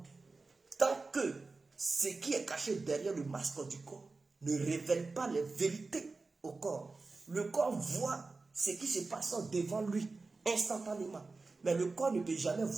tant que ce qui est caché derrière le masque du corps ne révèle pas les vérités au corps. Le corps voit ce qui se passe devant lui instantanément. Mais le corps ne peut jamais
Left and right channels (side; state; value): left; quieter; 3.8 dB